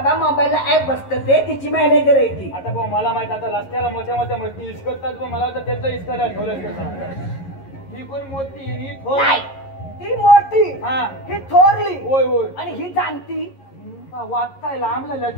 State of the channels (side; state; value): right; late; 11 ms